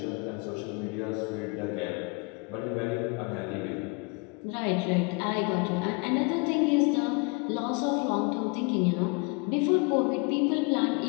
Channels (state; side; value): quieter; right; 30.0 dB